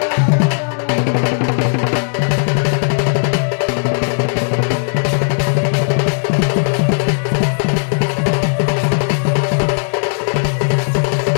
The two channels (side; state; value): right; silent; digital silence